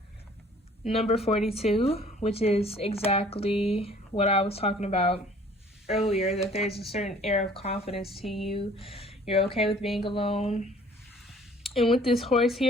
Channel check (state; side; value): normal; both; correlation 0.54